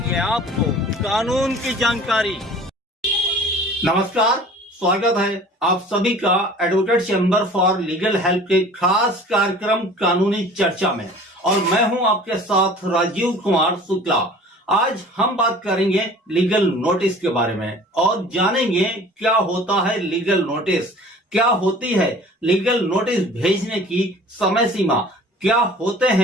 आपको कानून की जानकारी। नमस्कार, स्वागत है आप सभी का advocate chamber for legal help के खास कार्यक्रम कानूनी चर्चा में। और मैं हूं आपके साथ राजीव कुमार शुक्ला। आज हम बात करेंगे लीगल नोटिस के बारे में और जानेंगे क्या होता है लीगल नोटिस, क्या होती है लीगल नोटिस भेजने की समय सीमा, क्या होते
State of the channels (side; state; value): both; normal; correlation 0.46